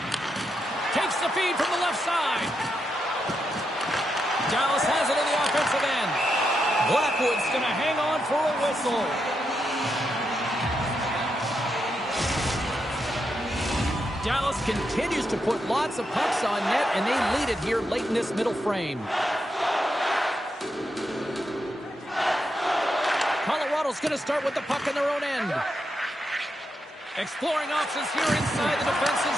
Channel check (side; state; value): both; normal; correlation 0.83